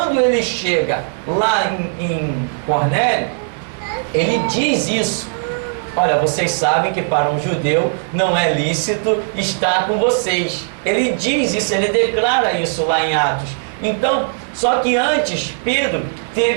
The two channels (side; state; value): left; silent; digital silence